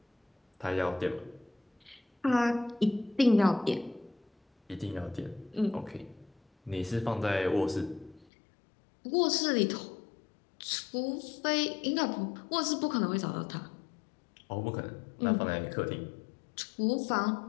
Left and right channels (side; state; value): right; drops out; at 8.2 s